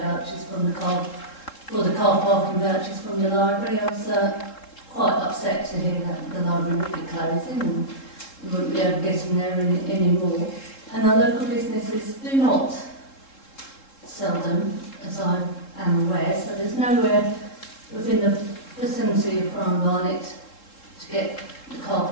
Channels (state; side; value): late; right; 3.7 ms